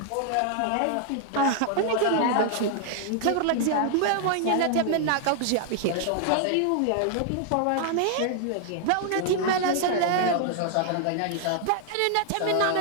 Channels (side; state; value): both; different; correlation 0.00